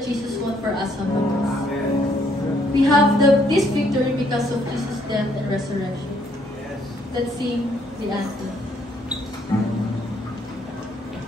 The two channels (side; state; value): both; normal; correlation 0.68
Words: Jesus won for us on the cross. Amen. We have this victory because of Jesus' death and resurrection. Yes. Let's sing the anthem.